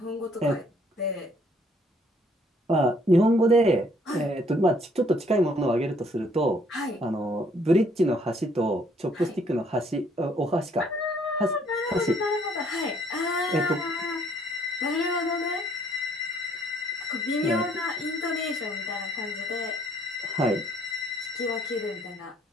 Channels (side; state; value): both; normal; correlation 0.64